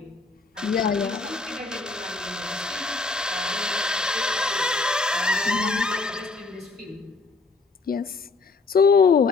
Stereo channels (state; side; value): quieter; right; 4.0 dB